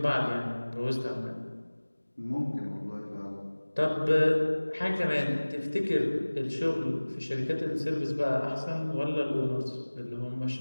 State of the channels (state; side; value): inverted; both; correlation -1.00